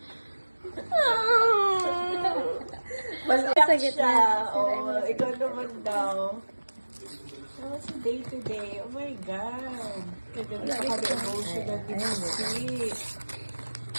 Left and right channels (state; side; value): inverted; both; correlation -1.00